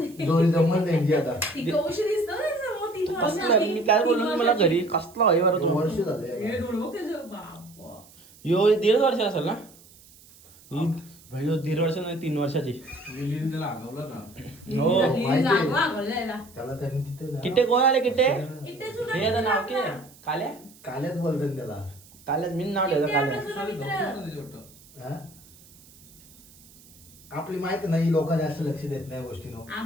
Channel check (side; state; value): right; noise; hiss, 24 dB below the sound